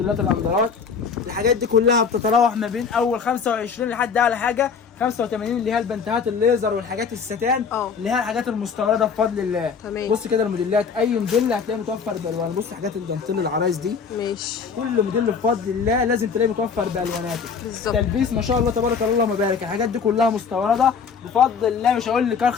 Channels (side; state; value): right; quieter; 5.9 dB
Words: الاندرات، الحاجات دي كلها بتتراوح ما بين اول 25 لحد اعلى حاجه 85 اللي هي البنتهات الليزر والحاجات الستان اللي هي الحاجات المستورده بفضل الله. تمام. بص كده الموديلات، اي موديل هتلاقيه متوفر بالوان. بص حاجات الدانتيل العرايس دي ماشي، كل موديل بفضل الله لازم تلاقيه متوفر بالواناته. بالظبط. تلبيس ما شاء الله تبارك الله اللهم بارك، الحاجات دي كلها مستورده بفضل الله. مش هقول لك